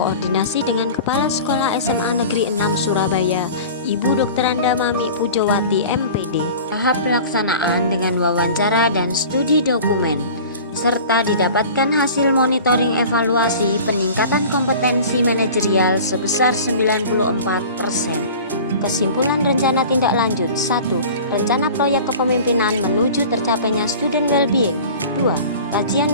dengan Kepala Sekolah SMA Negeri 6 Surabaya, Ibu Dr. Anda Mami Pujowati MPD. Tahap pelaksanaan dengan wawancara dan studi dokumen, serta didapatkan hasil monitoring evaluasi peningkatan kompetensi manajerial sebesar 94%. Kesimpulan rencana tindak lanjut: 1. Rencana proyek kepemimpinan menuju tercapainya student well-being. 2.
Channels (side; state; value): both; inverted; correlation -0.40